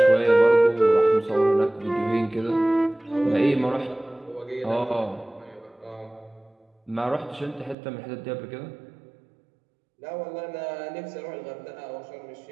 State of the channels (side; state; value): left; drops out; at 7.8 s